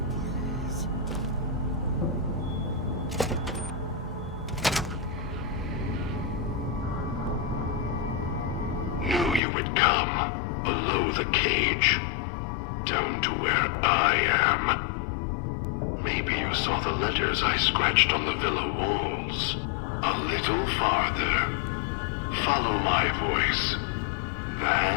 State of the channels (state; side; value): drops out; right; at 9.4 s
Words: Please. Knew you would come. Below the cage. Down to where I am. Maybe you saw the letters I scratched on the villa walls. A little farther. Follow my voice.